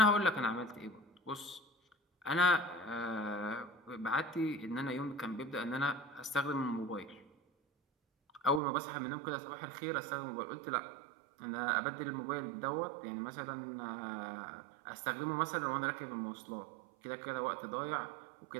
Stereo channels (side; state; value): left; drops out; at 8.6 s